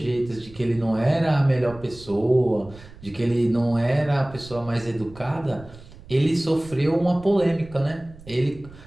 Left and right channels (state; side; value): noise; right; rumble, 19 dB below the sound